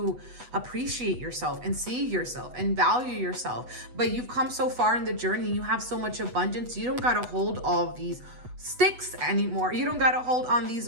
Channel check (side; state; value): left; late; 8.1 ms